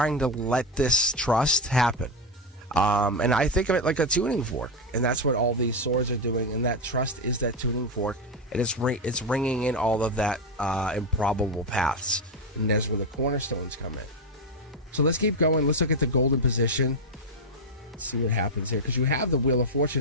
to let this trust happen. And I think of it like a tuning fork. And that's what all these swords are doing. And that trust is that tuning fork. And it's ringing in all of that improbable paths. And that's where the cornerstones come in. So let's keep going. Let's look at the golden position. Let's see what happens here. Because you have the Wheel of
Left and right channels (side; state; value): both; normal; correlation 0.08